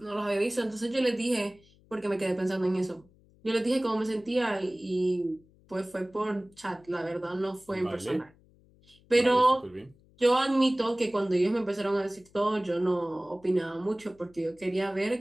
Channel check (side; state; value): left; noise; hum, 29 dB below the sound